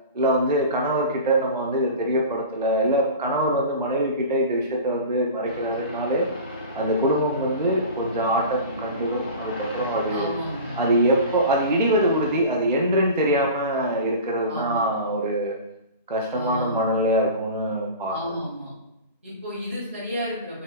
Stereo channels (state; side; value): inverted; both; correlation -0.35